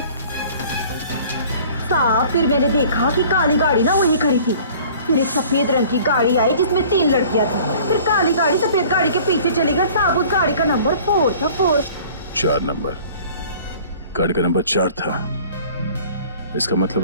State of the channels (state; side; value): inverted; both; correlation -0.49